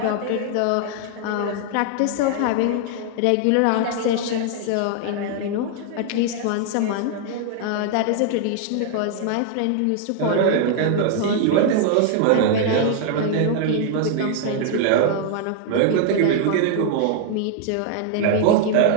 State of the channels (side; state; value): both; different; correlation 0.00